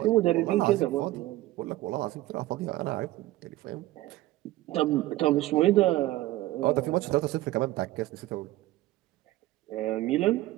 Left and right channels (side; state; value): left; quieter; 16.6 dB